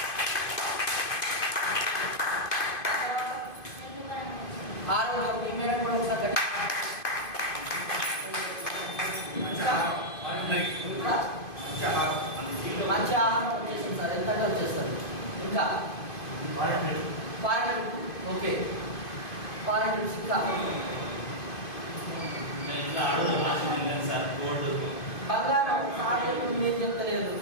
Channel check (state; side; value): late; right; 2.5 ms